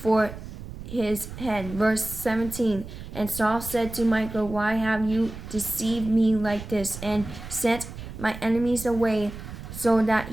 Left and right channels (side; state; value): right; noise; rumble, 11 dB below the sound